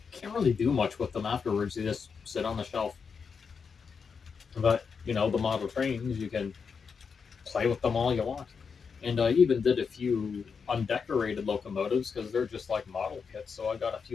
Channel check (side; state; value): right; quieter; 5.8 dB